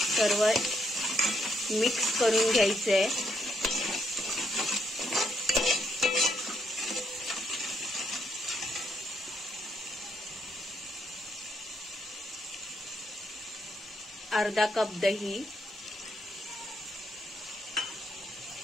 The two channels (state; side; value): normal; both; correlation 0.76